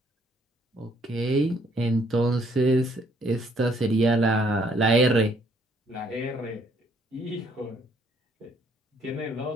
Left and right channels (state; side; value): normal; both; correlation 0.66